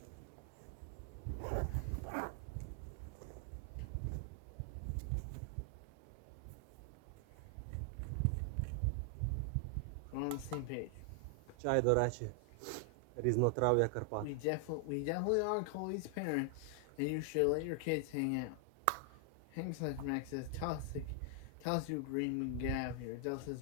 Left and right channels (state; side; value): different; both; correlation 0.00